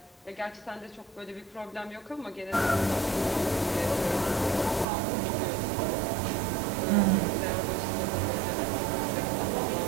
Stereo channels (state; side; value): drops out; left; at 4.9 s